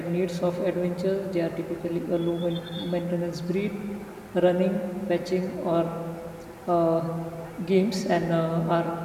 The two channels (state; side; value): identical; both; correlation 1.00